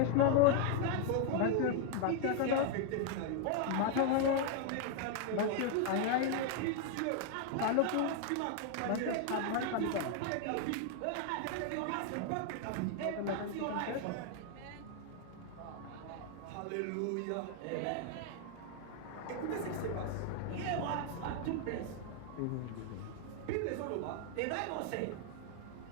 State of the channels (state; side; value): different; both; correlation 0.01